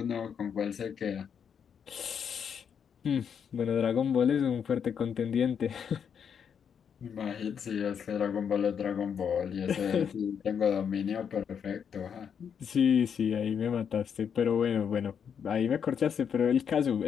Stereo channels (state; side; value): quieter; right; 7.5 dB